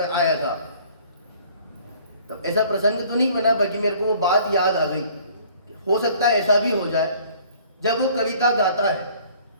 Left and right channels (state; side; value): inverted; both; correlation -0.54